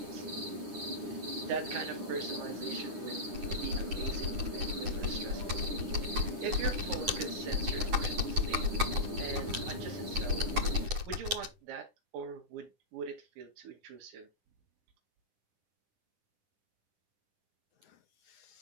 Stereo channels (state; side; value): late; left; 9.7 ms